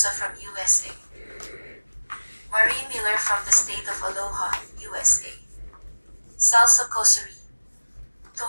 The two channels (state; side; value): inverted; both; correlation -1.00